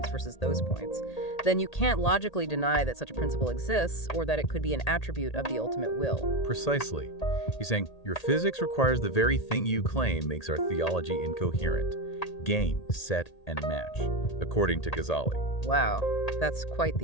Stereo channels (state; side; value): late; right; 1.8 ms